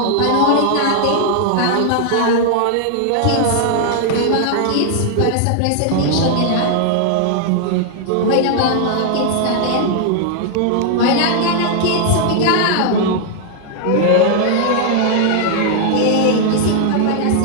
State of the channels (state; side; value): different; both; correlation 0.00